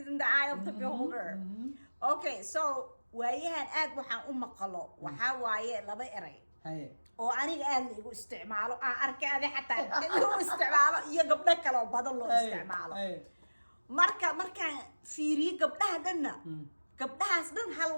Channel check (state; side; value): inverted; both; correlation -1.00